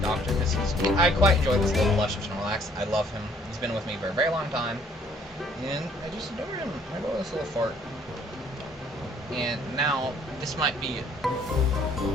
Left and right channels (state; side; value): normal; both; correlation 0.61